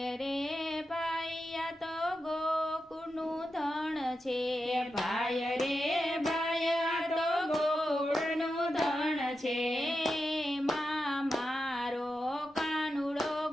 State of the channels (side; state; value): both; normal; correlation 0.89